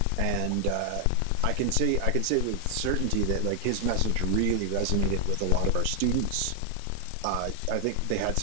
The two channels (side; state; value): both; different; correlation 0.00